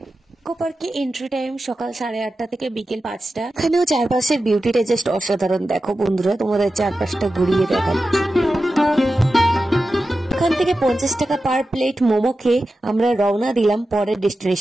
ইকো পার্কে এন্ট্রি টাইম সকাল 8:30 থেকে বিকেল 5টা। এখানেও চারপাশের বিউটিটা জাস্ট অসাধারণ। দেখো বন্ধুরা, তোমাদের চারপাশটা ঘুরিয়ে দেখাচ্ছি। এখান থেকে 50 টাকা পার প্লেট মোমো খেয়ে আমরা রওনা দিলাম পরের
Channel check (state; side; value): normal; both; correlation 0.93